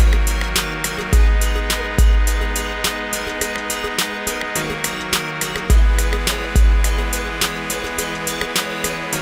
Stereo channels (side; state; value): both; identical; correlation 1.00